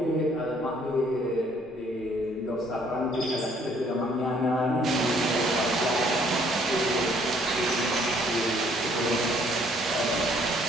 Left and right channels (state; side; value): normal; both; correlation 0.63